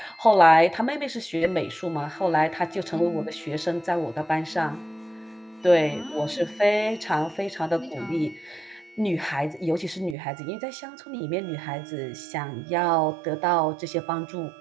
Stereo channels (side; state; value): left; drops out; at 10.2 s